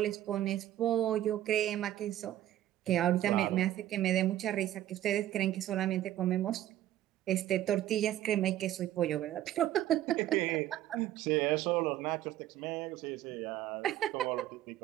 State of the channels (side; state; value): left; quieter; 13.1 dB